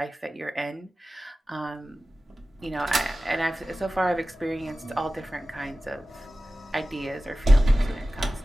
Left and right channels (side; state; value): both; normal; correlation 0.95